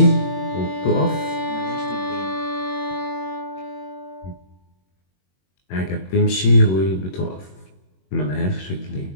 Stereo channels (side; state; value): right; late; 21 ms